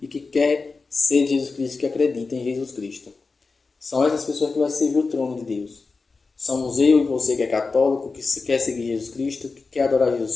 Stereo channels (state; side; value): quieter; right; 4.2 dB